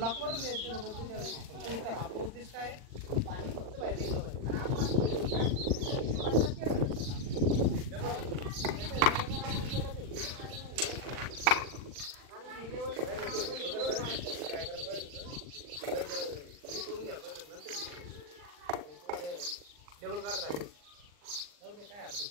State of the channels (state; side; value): late; left; 40 ms